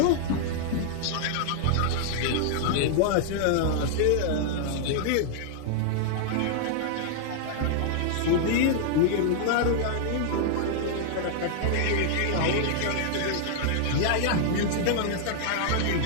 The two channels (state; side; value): different; both; correlation -0.01